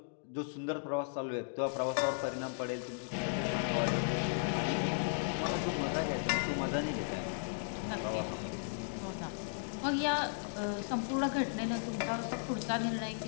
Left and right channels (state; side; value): silent; right; digital silence